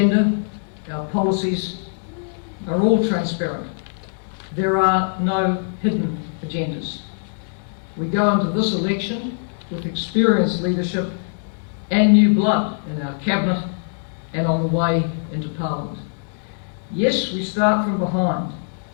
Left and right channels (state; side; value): silent; right; digital silence